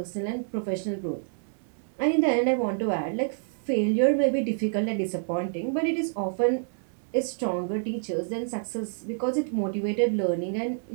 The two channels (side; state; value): left; silent; digital silence